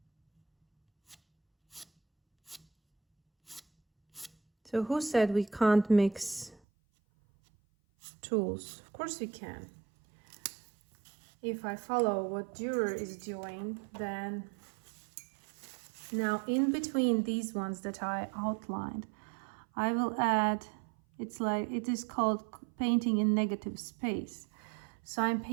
So who said we can't mix tools? Of course we can. If I follow what Dürer is doing, then now in between these ones that I outlined, I will add, it is called painting in negative space. So I'm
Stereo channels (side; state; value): left; drops out; at 6.6 s